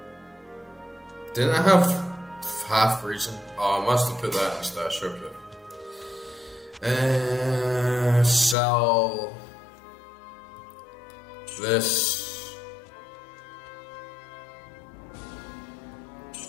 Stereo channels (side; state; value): right; drops out; at 8.6 s